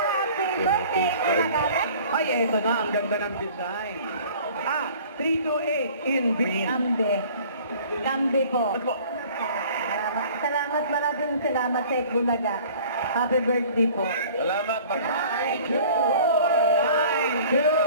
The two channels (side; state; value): both; inverted; correlation -0.48